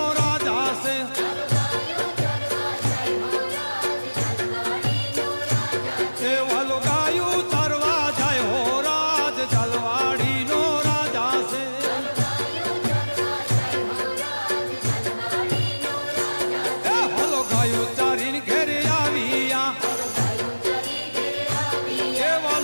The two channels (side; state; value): both; inverted; correlation -1.00